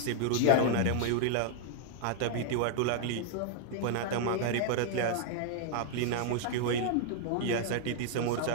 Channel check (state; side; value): different; both; correlation 0.00